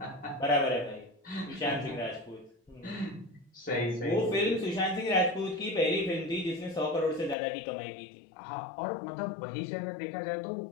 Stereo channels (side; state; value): right; drops out; at 7.4 s